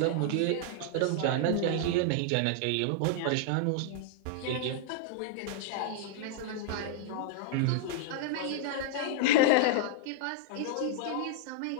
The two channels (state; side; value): different; both; correlation -0.01